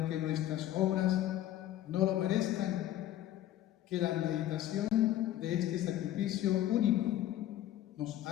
nuestras obras no lo merezcan, que la meditación de este sacrificio único nos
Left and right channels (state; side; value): quieter; right; 12.9 dB